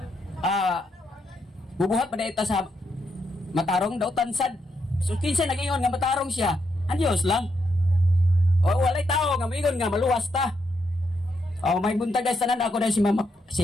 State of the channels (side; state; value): both; normal; correlation 0.80